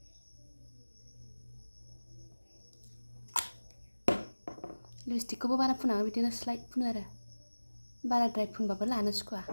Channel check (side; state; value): both; inverted; correlation -1.00